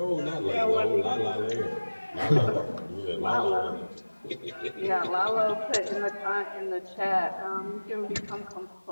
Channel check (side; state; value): both; inverted; correlation -1.00